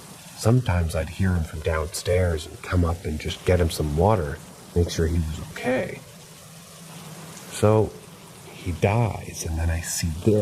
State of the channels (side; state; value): both; identical; correlation 1.00